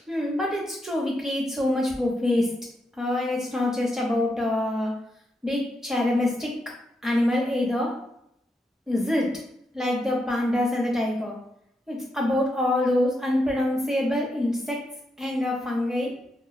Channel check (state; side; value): normal; both; correlation 0.82